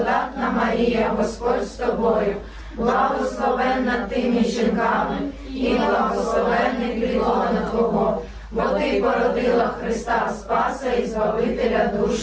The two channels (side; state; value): both; identical; correlation 1.00